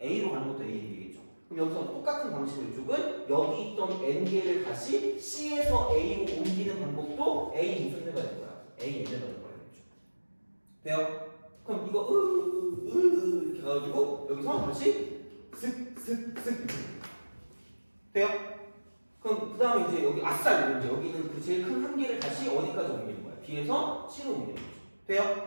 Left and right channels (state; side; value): inverted; both; correlation -1.00